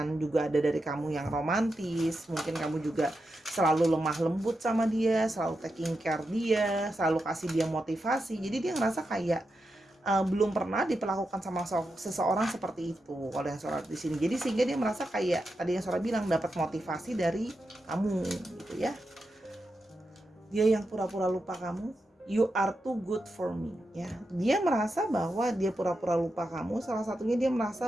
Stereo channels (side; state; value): both; normal; correlation 0.87